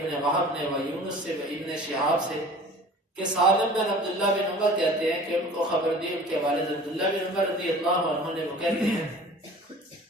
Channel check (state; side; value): normal; both; correlation 0.44